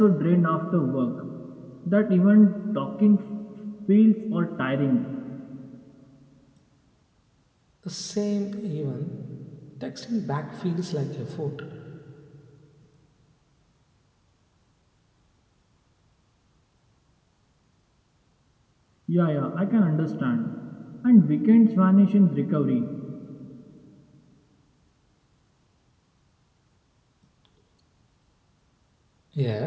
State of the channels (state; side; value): identical; both; correlation 1.00